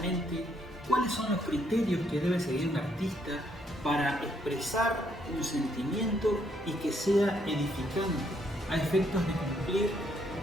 cuáles son los criterios que debe seguir un artista para expresar un sentimiento y que sea edificante a efectos de cumplir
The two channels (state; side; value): normal; both; correlation 0.72